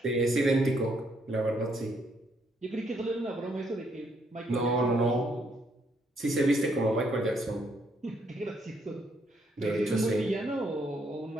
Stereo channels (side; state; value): both; normal; correlation 0.72